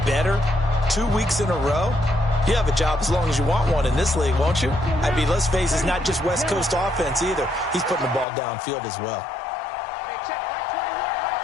better 2 weeks in a row, you have a job as long as you want one in this league, won't you? I mean, let's face it, it's not just West Coast offense either. He's putting the ball downfield as well.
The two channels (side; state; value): right; drops out; at 8.2 s